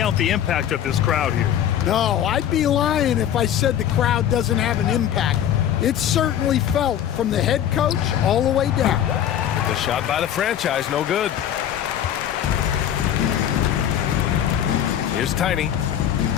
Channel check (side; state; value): right; quieter; 10.2 dB